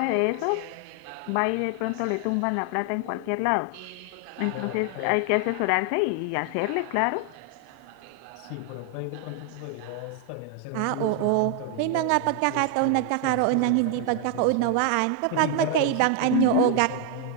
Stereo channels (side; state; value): both; different; correlation 0.00